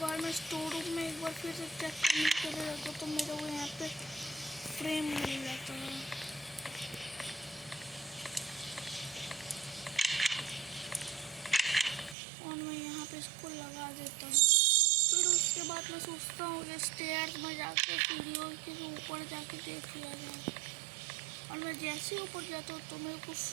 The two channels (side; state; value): left; drops out; at 12.2 s